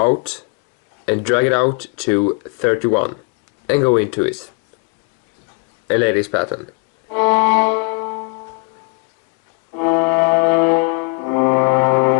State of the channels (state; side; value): quieter; right; 34.4 dB